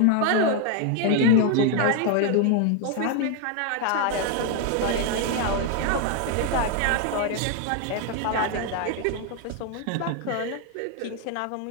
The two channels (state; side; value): different; both; correlation 0.00